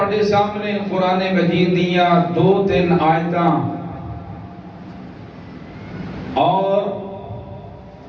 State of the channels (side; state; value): both; identical; correlation 1.00